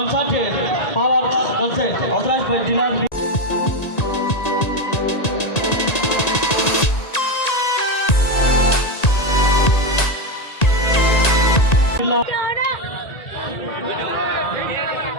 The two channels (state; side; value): late; right; 1.9 ms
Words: পাওয়ার কনসার্ট অথরাইজড বাই ডিলার